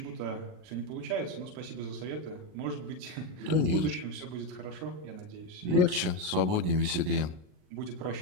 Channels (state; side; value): late; left; 39 ms